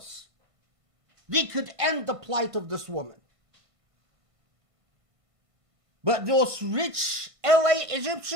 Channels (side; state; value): left; late; 1.5 ms